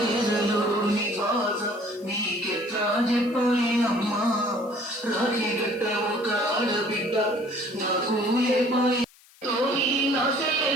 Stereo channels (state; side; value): noise; left; hiss, 27 dB below the sound